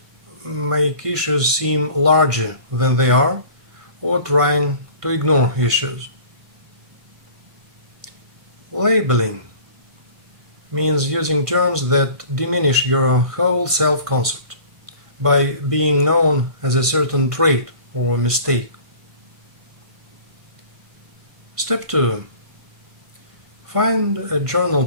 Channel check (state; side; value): late; left; 1.5 ms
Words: make issues seem larger than they are, or trying to ignore issues. Labeling means using terms that diminish your whole self-concept by being known as a certain trait or mistake. Step 2. Find a journal